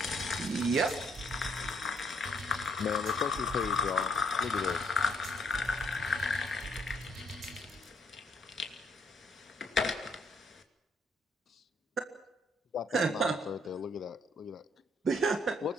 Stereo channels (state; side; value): normal; both; correlation 0.69